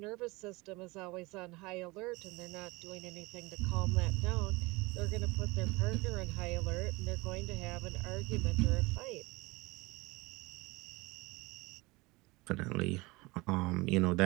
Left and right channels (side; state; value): left; quieter; 23.5 dB